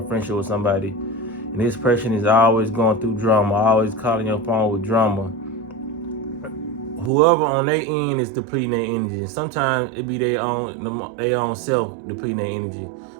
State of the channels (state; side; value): drops out; left; at 7.1 s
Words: friendship with somebody, and this person is always going through drama, always calling your phone with drama, whoever on their end is depleting their energy. And sometimes it be their own self depleting their energy